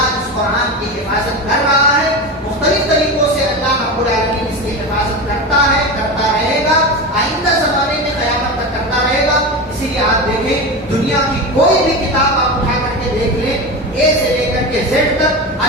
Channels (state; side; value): normal; both; correlation 0.22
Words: اس قرآن کی حفاظت کر رہا ہے. مختلف طریقوں سے اللہ رب العالمین اس کی حفاظت کرتا ہے، کرتا رہے گا، آئندہ زمانے میں قیامت تک کرتا رہے گا. اسی لیے آپ دیکھیں دنیا کی کوئی بھی کتاب آپ اٹھا کر کے دیکھ لیں، اے سے لے کر کے زیڈ تک،